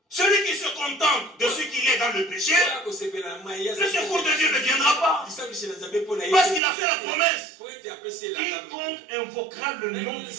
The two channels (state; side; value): drops out; left; at 6.6 s